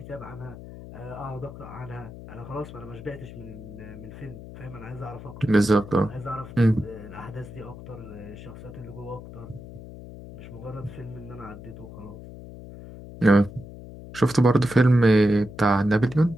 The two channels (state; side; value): noise; left; hum, 14 dB below the sound